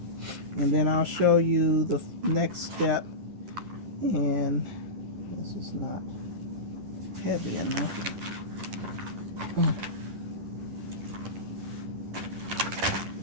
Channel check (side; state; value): left; late; 10 ms